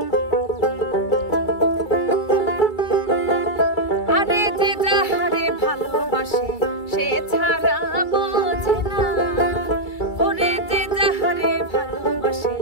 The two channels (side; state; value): right; late; 2.3 ms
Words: সে ছাড়া বোঝে না ওরে যে যাহারে ভালোবাসে